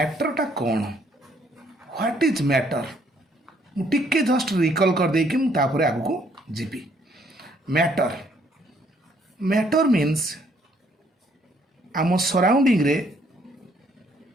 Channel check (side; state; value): both; normal; correlation 0.67